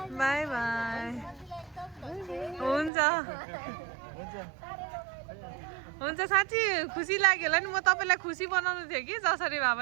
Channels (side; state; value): left; drops out; at 2.9 s